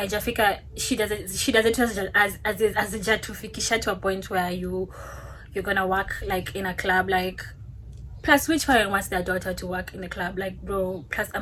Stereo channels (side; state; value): both; identical; correlation 1.00